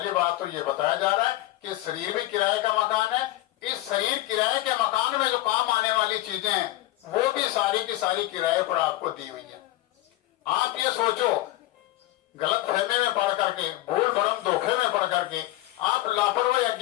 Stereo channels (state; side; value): quieter; right; 16.8 dB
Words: बात तो ये बताया जा रहा है कि शरीर भी किराए का मकान है। इस शरीर किराए के मकान में जो काम आने वाली चीजें हैं वो भी सारी की सारी किराए पर आपको दी हुई है। आप ये सोचो, गलत फहमी में पढ़ करके, भूल भरम धोखे में पढ़ करके, आप लापरवाही